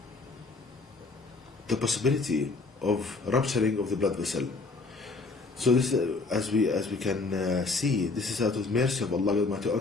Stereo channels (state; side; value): quieter; right; 3.8 dB